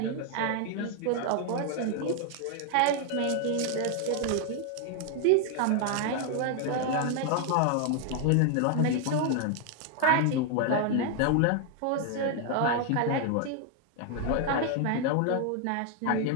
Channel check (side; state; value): both; different; correlation 0.00